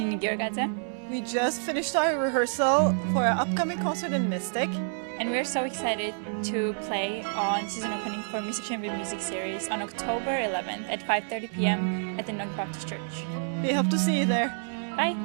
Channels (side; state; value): left; silent; digital silence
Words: Giorgadze. We just finished our rehearsal for our upcoming concert in Mystic. And we're so excited to play on season opening for Mystic Chamber Music Series on October 11th at 5:30 p.m. at the Knock Baptist Church. We hope to see you there.